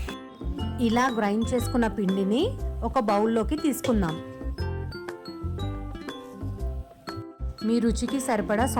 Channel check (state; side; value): identical; both; correlation 1.00